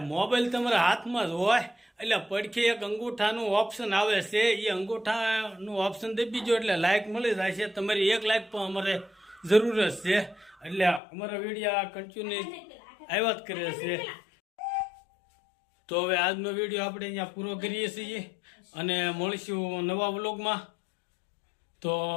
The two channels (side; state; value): right; drops out; at 11.0 s